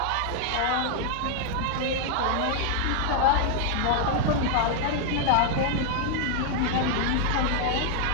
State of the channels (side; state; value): both; different; correlation 0.00